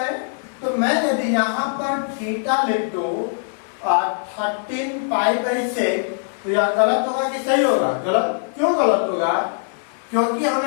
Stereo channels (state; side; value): silent; right; digital silence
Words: तो मैं यदि यहाँ पर थीटा लिख दूं 13 पाई बाई 6 तो यह गलत होगा कि सही होगा? गलत। क्यों गलत होगा? क्योंकि